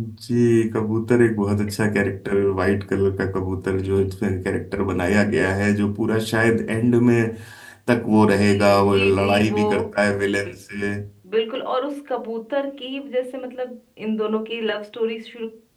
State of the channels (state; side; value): identical; both; correlation 1.00